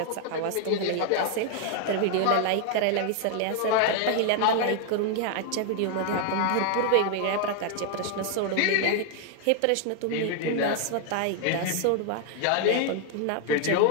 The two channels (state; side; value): different; both; correlation 0.00